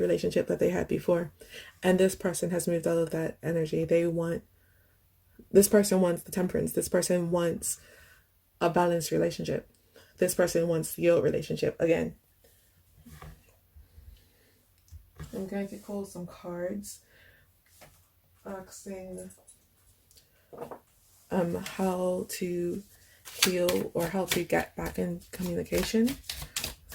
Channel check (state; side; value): identical; both; correlation 1.00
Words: relationship that they had before. And this person has moved out of that energy. This person wants the temperance. This person wants a balanced relationship. This person wants your relationship again. I'm going to pull some cards asking how to heal or how to get back in communication